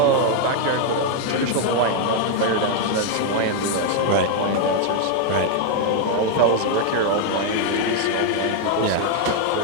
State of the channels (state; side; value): different; both; correlation 0.00